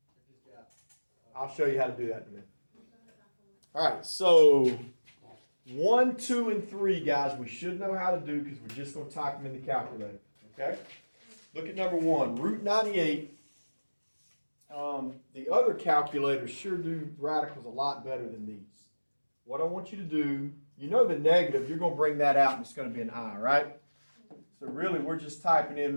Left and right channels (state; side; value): inverted; both; correlation -1.00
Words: I'll show you how to do that in a minute. All right, so 1, 2, and 3, guys, we should know how to do because we're just going to type them in the calculator. Okay? Look at number 1, root 98. The other calculators sure do radicals a lot better than these. What I want you to do, you know the negative, you're going to bring that out and it's going to be an I, right? So really, we're just typing